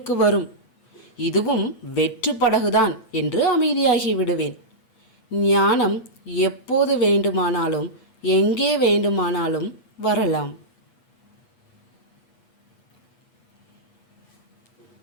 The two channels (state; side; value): late; right; 8.2 ms